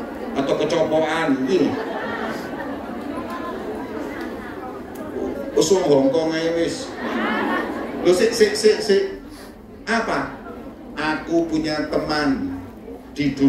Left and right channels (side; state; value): both; identical; correlation 1.00